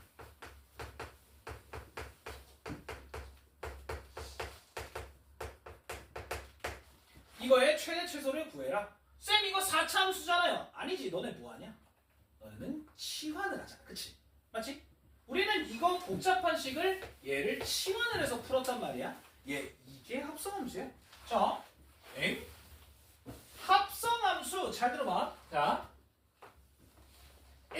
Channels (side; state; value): both; identical; correlation 1.00